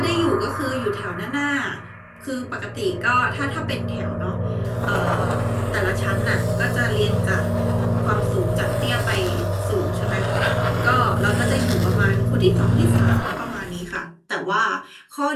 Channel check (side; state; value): both; identical; correlation 1.00